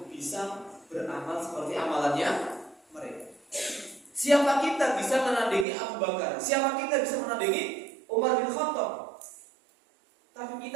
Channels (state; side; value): drops out; left; at 5.7 s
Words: bisa beramal seperti amalannya mereka. Siapa kita bisa menandingi Abu Bakar? Siapa kita bisa menandingi Umar bin Khattab? Tapi